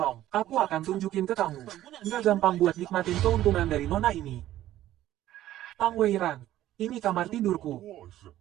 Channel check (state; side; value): quieter; left; 13.6 dB